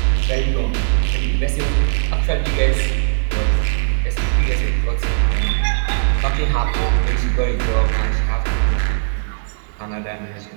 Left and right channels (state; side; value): silent; left; digital silence